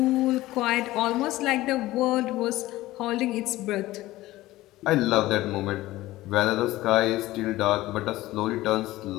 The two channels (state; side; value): quieter; right; 17.1 dB